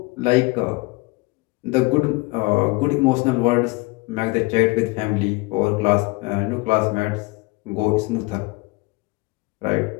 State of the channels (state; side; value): quieter; right; 24.7 dB